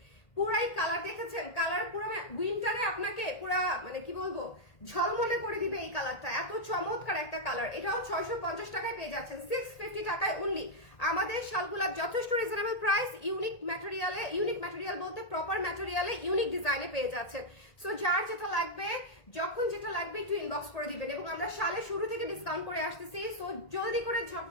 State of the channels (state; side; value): late; right; 1.8 ms